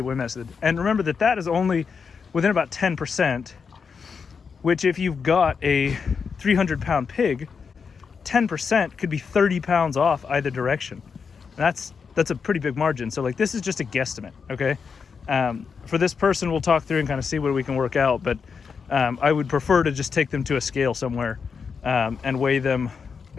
weight method. And remember that is only within about 10%, which if you've got a 300-pound pig, 10% could be 30 pounds off either direction. And that's a pretty big margin. So like, this is just a guesstimate, okay? For this person, we'll talk through and kind of see what we can work out, but I would prefer to just take them to a scale somewhere and weigh them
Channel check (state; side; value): quieter; right; 5.8 dB